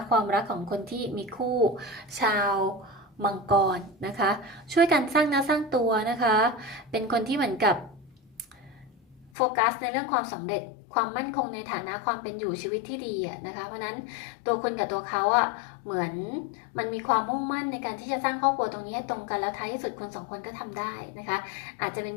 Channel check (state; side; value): drops out; right; at 9.3 s